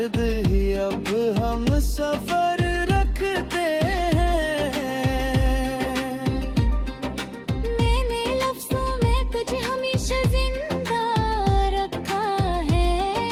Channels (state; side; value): identical; both; correlation 1.00